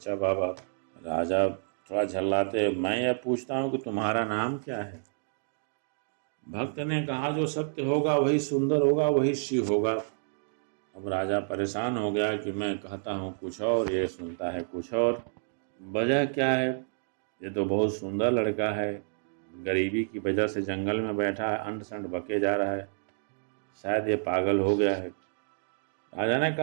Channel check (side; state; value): left; silent; digital silence